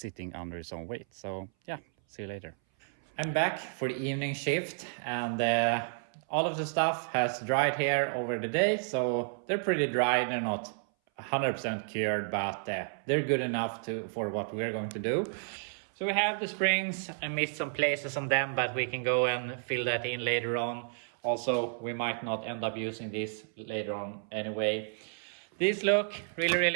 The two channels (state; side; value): silent; left; 57 dB below the other